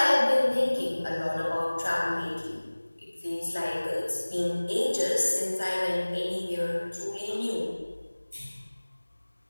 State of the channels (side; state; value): both; inverted; correlation -1.00